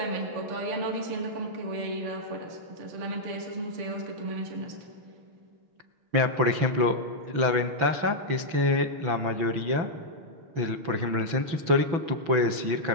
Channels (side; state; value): left; late; 6.0 ms